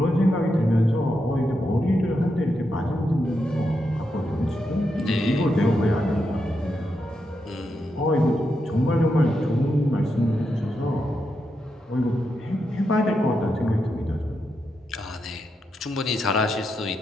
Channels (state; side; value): normal; both; correlation 0.84